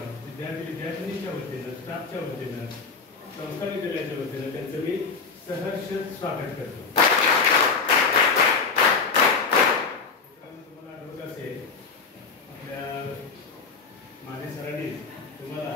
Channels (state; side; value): quieter; right; 4.9 dB